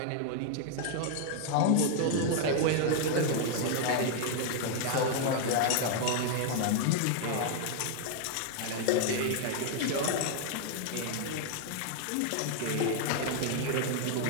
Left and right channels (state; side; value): different; both; correlation 0.00